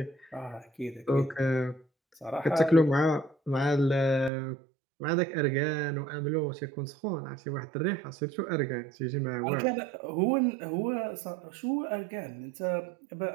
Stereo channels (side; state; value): left; drops out; at 4.3 s